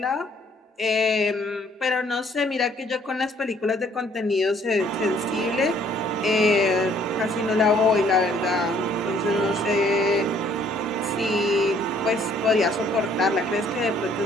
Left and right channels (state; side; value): normal; both; correlation 0.62